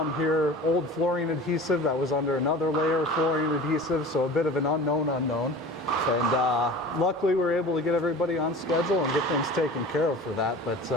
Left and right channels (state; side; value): normal; both; correlation 0.39